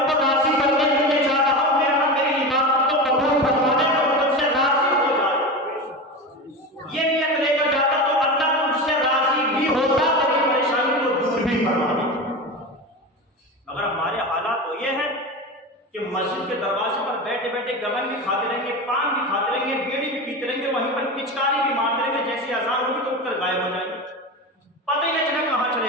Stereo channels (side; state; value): both; normal; correlation 0.24